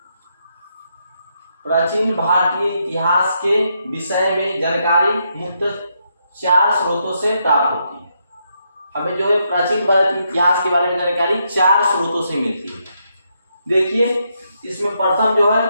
प्राचीन भारतीय इतिहास के विषय में जानकारी मुख्यतः 4 स्रोतों से प्राप्त होती है। हमें जो है प्राचीन भारतीय इतिहास के बारे में जानकारी 4 स्रोतों से मिलती है। देखिए, इसमें प्रथम जो है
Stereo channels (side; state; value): both; inverted; correlation -0.79